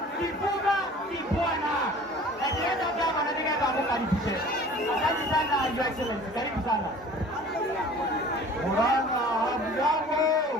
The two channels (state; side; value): normal; both; correlation 0.46